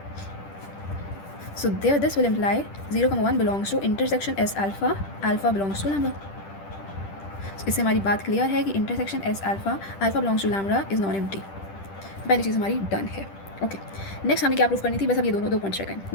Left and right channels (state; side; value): late; right; 10 ms